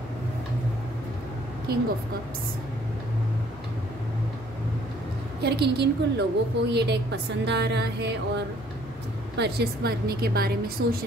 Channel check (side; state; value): both; normal; correlation 0.60